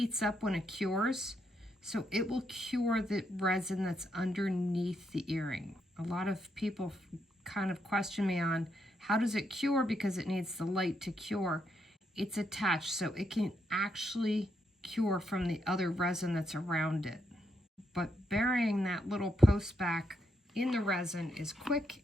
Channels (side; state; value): both; normal; correlation 0.79